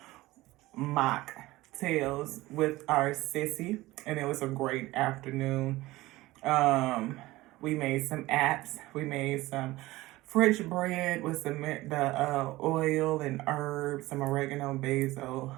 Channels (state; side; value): quieter; left; 18.6 dB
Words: with our sissy, and it was a great afternoon. We made some apps. We made some French bread with some the oil and herbs, some oregano, basil,